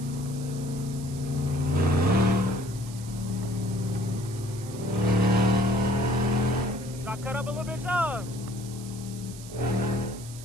Cut up a little bit, y'all.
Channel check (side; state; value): right; noise; hiss, 16 dB below the sound